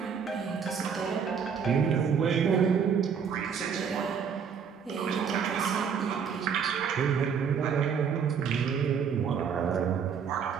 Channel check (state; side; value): quieter; left; 6.8 dB